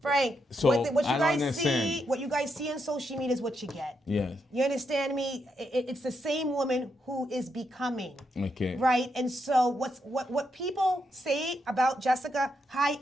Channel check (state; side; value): normal; both; correlation 0.81